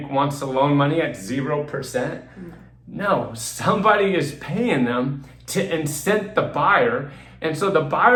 wants to loan money at 0%? No, somebody is paying them to incent the buyer. And so the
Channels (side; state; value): both; identical; correlation 1.00